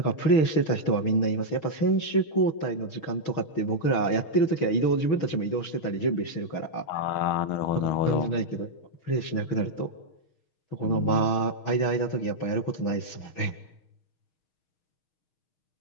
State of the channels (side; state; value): right; late; 6.0 ms